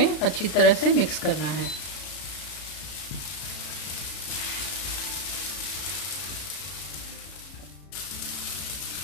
अच्छी तरह से मिक्स करना है।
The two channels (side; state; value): right; late; 33 ms